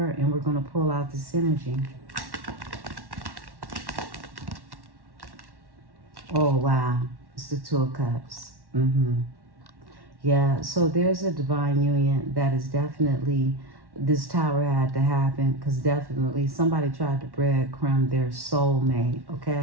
and we're going to pull out this energy. Oh, wow. It's the Two of Cups. Yeah, so there's a divine union that is definitely, this tower had to happen because definitely somebody tried to breadcrumb their soulmate,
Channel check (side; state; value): left; late; 1.1 ms